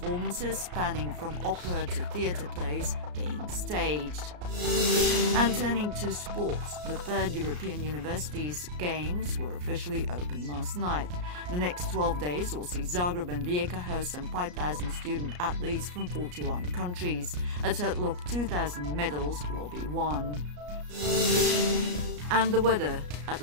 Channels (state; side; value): late; left; 34 ms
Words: spanning from opera to theatre plays being staged. And turning to sports, the third European Universities Games were officially opened last night. The next 12 days will see Zagreb and Rijeka host some 5,000 student athletes from 41 countries. A total of 2,000 medals will be won. And the weather, at